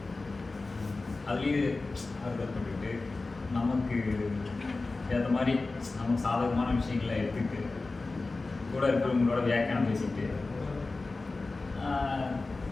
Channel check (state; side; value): quieter; right; 3.5 dB